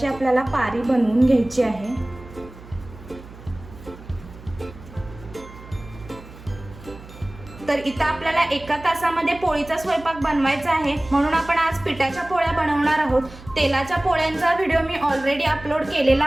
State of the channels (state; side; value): noise; right; hum, 18 dB below the sound